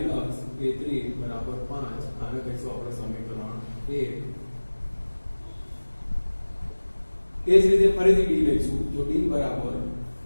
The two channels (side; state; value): both; inverted; correlation -1.00